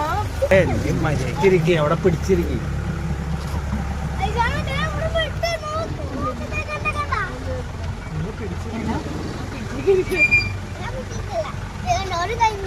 മര്യാദക്കിരിക്കുക, അവിടെ പിടിച്ചിരിക്കും.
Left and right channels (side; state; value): both; identical; correlation 1.00